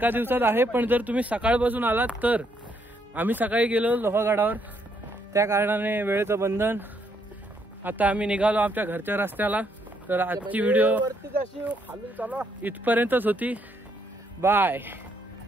दिवसात आहे, पण जर तुम्ही सकाळपासून आलात तर. आम्ही सकाळी गेलो लोहगडावर, त्या कारणाने वेळेचं बंधन. आता आम्ही निघालो आमच्या घरच्या रस्त्याला. तर आजची व्हिडिओ इथपर्यंतच होती. Bye.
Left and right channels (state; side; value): normal; both; correlation 0.73